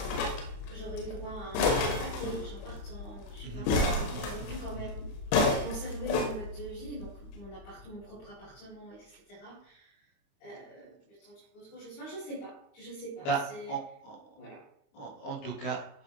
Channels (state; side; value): late; right; 27 ms